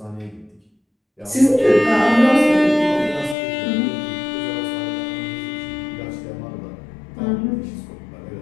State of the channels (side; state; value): right; drops out; at 3.4 s